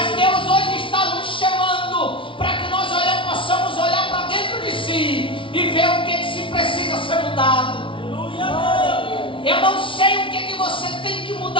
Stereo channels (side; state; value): right; late; 0.25 ms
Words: Deus hoje está nos chamando para que nós possamos olhar para dentro de si e ver o que se precisa ser mudado. Eu não sei o que você tem que